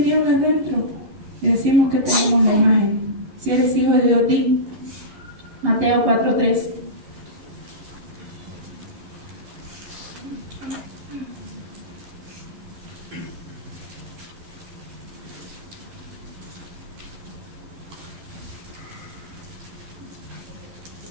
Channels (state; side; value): late; left; 11 ms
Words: dentro. Y decimos que tenemos la imagen. Si eres hijo de Dios, di. Mateo 4:3.